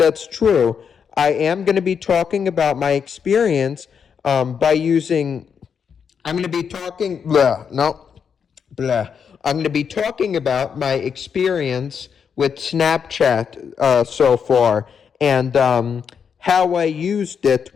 true. I am going to be talking about my experience by using, I'm going to be talking, blah, no, blah. I'm going to be talking about my experience with Snapchat so far, and how I used it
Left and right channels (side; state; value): right; quieter; 6.9 dB